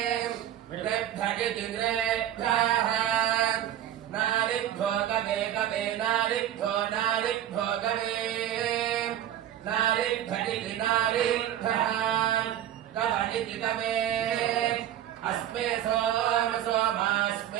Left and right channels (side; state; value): left; quieter; 11.6 dB